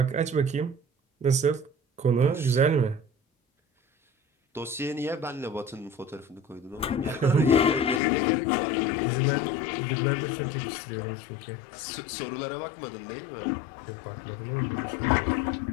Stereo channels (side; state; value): right; drops out; at 8.0 s